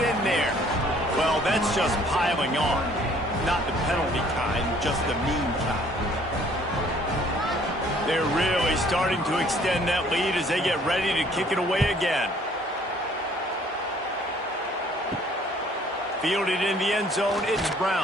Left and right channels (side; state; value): both; normal; correlation 0.58